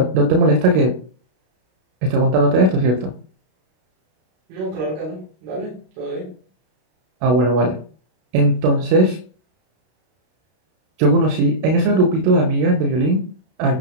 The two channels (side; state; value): left; late; 32 ms